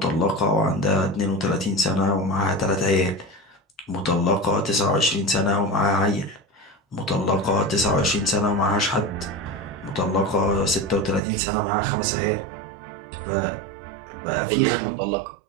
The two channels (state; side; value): drops out; left; at 11.2 s